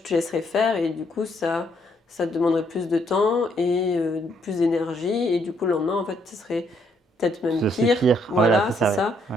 te laisserais faire et du coup ça te demanderait plus de temps et plus d'énergie. Et du coup le lendemain en fait ce serait peut-être même pire. Voilà, c'est ça. Ouais.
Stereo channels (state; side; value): normal; both; correlation 0.71